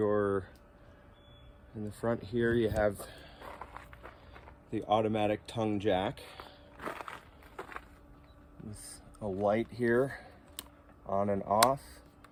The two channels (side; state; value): both; identical; correlation 1.00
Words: the front here, you have the automatic tongue jack with a light here, on and off,